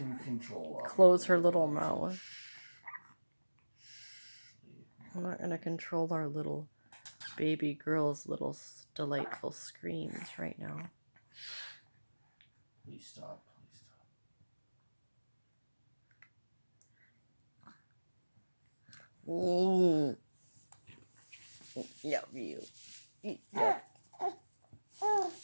control close her little mouth. I'm not gonna control our little baby girl's little delightful screams right now. Please stop. Ooh. Love you. Love.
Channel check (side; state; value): both; inverted; correlation -1.00